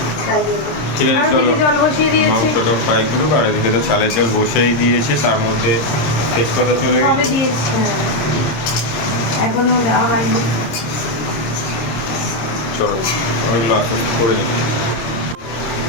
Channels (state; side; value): late; right; 26 ms